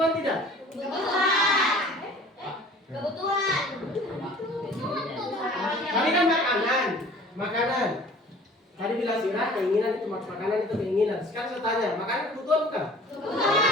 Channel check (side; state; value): both; normal; correlation 0.48